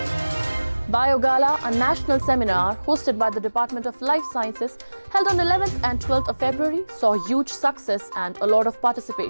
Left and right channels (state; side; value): inverted; both; correlation -1.00